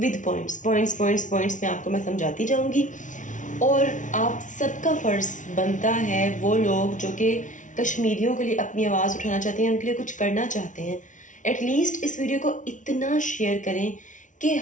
पॉइंट्स में आपको मैं समझाती जाऊंगी. और आप सबका फ़र्ज़ बनता है, वो लोग जो कि कश्मीरियों के लिए अपनी आवाज़ उठाना चाहते हैं, उनके लिए कुछ करना चाहते हैं, एटलीस्ट इस वीडियो को इतना शेयर करें कि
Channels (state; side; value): late; right; 0.37 ms